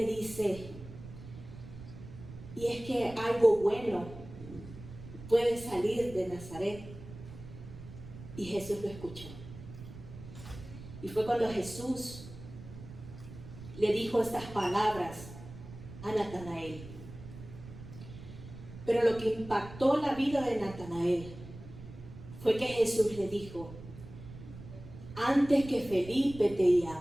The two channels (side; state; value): right; noise; rumble, 14 dB below the sound